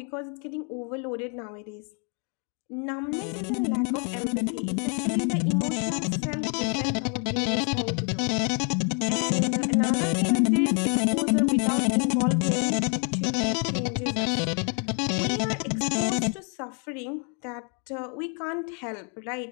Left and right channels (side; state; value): right; quieter; 39.1 dB